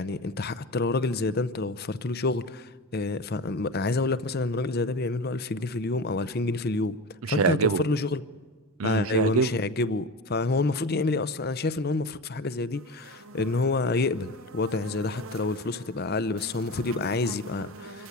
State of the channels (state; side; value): normal; both; correlation 0.28